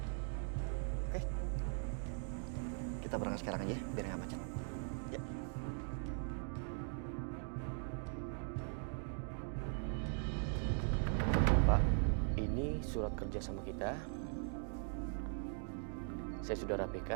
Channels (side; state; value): left; silent; 51 dB below the other